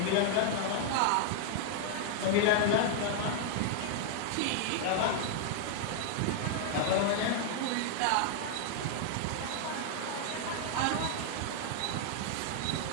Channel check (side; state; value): both; different; correlation 0.00